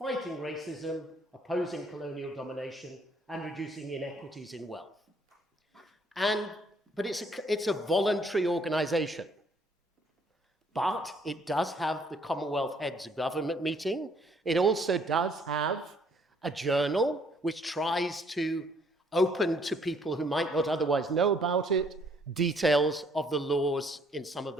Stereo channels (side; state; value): both; normal; correlation 0.64